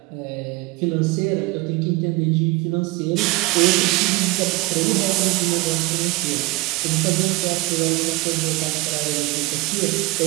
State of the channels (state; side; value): quieter; left; 21.2 dB